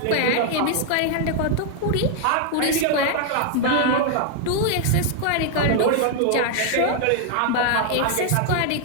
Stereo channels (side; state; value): both; different; correlation 0.00